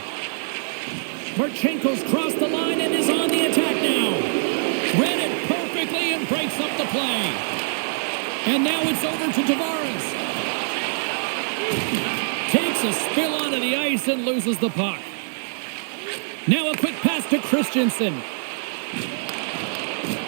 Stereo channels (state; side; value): silent; left; digital silence